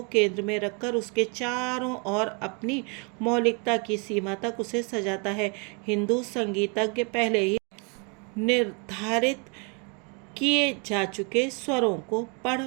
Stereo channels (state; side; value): quieter; left; 33.5 dB